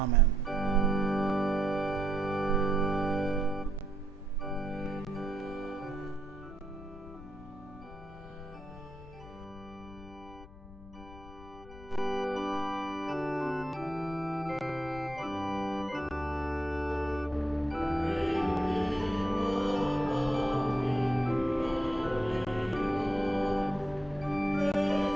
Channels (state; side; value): noise; left; rumble, 17 dB below the sound